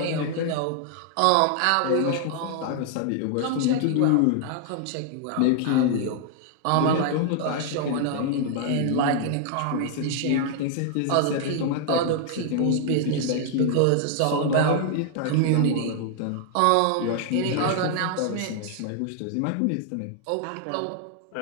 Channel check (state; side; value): different; both; correlation 0.00